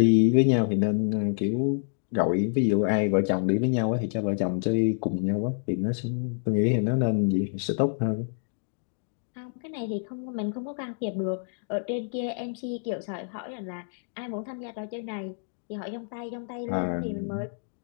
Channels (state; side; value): silent; right; digital silence